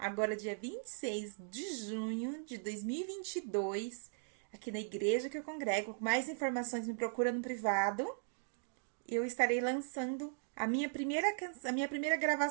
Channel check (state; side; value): silent; left; digital silence